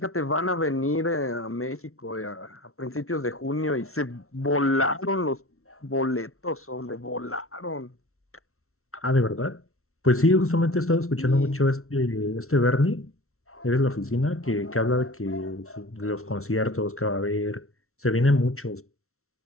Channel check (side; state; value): right; late; 0.63 ms